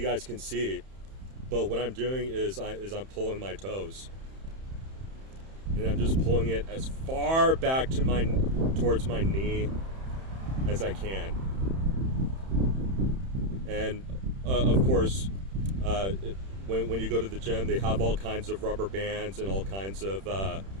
guys can see, but what I'm doing is I'm pulling my toes, and I'm just pulling it as far back towards my knee as I can. And of course, when you go to the gym, they have all kinds of rubber bands and all kinds of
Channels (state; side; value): late; left; 31 ms